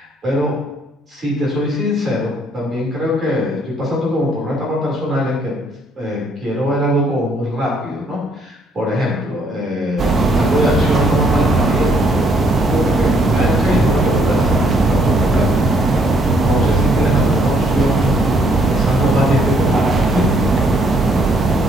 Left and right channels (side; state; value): both; normal; correlation 0.67